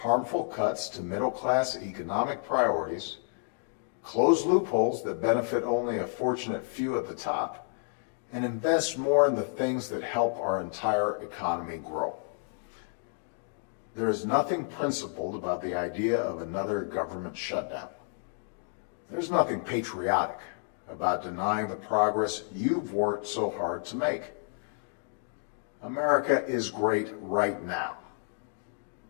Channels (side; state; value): right; silent; 58 dB below the other